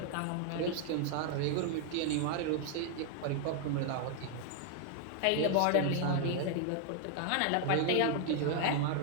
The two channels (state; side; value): different; both; correlation 0.00